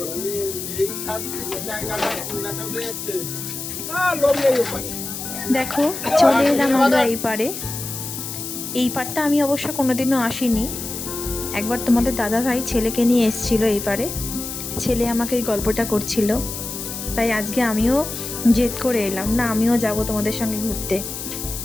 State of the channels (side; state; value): left; noise; hiss, 7 dB below the sound